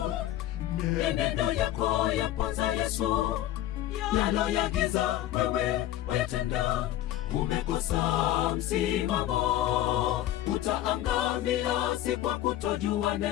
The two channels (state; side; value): quieter; right; 13.4 dB